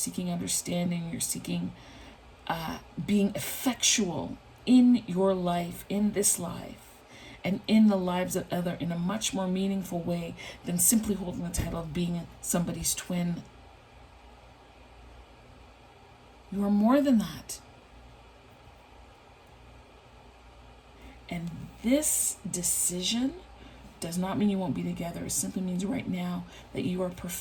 understanding, you're seeking being effectual in your life, in this life, and in the lives of others in a much more meaningful way than simply holding the title of being somebody's twin. You are more than that. And this decision does not mean you won't be together. It simply means right now that you are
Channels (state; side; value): identical; both; correlation 1.00